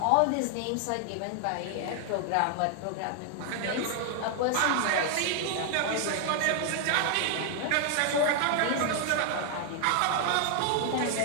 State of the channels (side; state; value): both; different; correlation 0.00